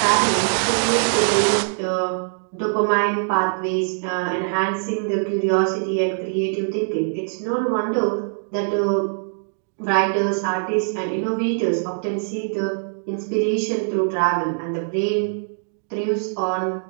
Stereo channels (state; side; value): silent; left; digital silence